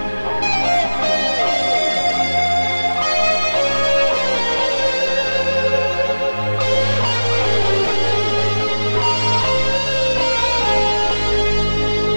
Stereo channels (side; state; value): both; inverted; correlation -1.00